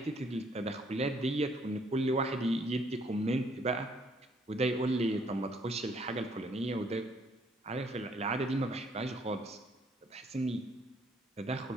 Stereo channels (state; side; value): normal; both; correlation 0.66